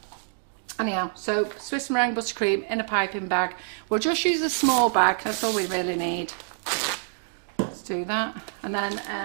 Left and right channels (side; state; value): left; silent; digital silence